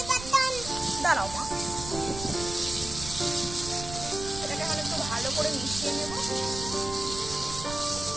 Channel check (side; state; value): right; noise; rumble, 10 dB below the sound